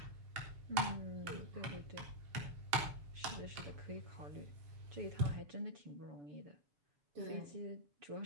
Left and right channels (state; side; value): late; left; 7.0 ms